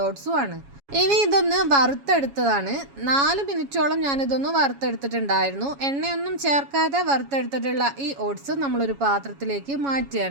ഓട്സും ആണ്. ഇനി ഇതൊന്ന് വറുത്തെടുത്തതാണ്. 4 മിനിറ്റോളം ഞാനിതൊന്ന് വറുത്തെടുത്തിട്ടുണ്ടായിരുന്നു. എണ്ണയൊന്നും ചേർക്കാതെ വറുത്തെടുത്തിട്ടുള്ള ഈ ഓട്സ് നമ്മളൊരു പാത്രത്തിലേക്ക്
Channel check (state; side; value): late; left; 7.2 ms